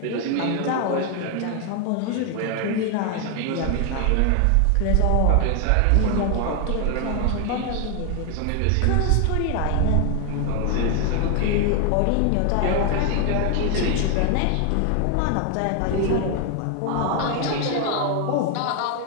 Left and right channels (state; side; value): different; both; correlation 0.00